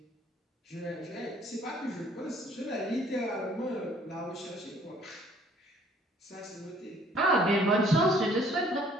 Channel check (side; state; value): both; normal; correlation 0.59